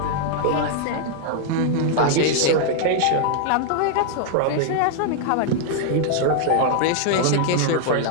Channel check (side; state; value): both; different; correlation -0.01